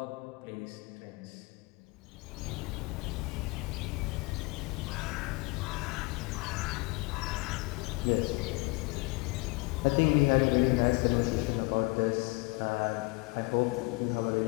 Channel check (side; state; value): right; quieter; 25.8 dB